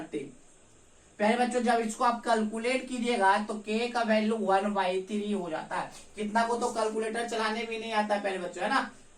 प्यारे बच्चों जब इसको आप कैलकुलेट कीजिएगा तो के का वैल्यू 1/3 हो जाता है। कितना को तो कैलकुलेटर चलाने भी नहीं आता प्यारे बच्चों, है ना।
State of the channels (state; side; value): identical; both; correlation 1.00